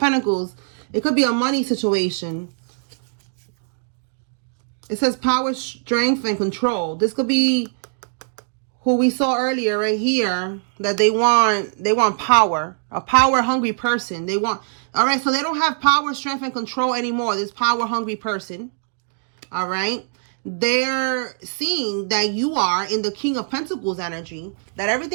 It could be a money situation. It says power, strength, and control. This could be who we saw earlier right here, that they want power. A power-hungry person. They want... All right, so they don't have power, strength, and control anymore. This power-hungry person. All right? They're seeing that you are in the King of Pentacles energy, that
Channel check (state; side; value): silent; left; digital silence